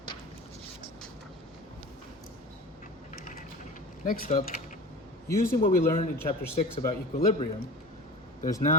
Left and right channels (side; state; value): both; normal; correlation 0.35